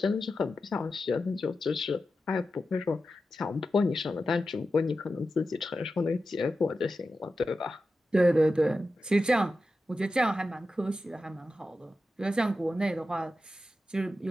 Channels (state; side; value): normal; both; correlation 0.91